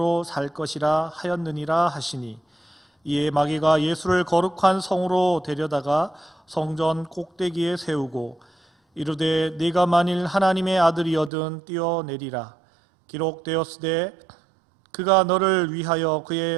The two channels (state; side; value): drops out; left; at 11.3 s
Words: 살 것이라 하였느니라 하시니 이에 마귀가 예수를 거룩한 성으로 데려다가 성전 꼭대기에 세우고 이르되 네가 만일 하나님의 아들이거든 뛰어내리라. 기록되었으되 그가 너를 위하여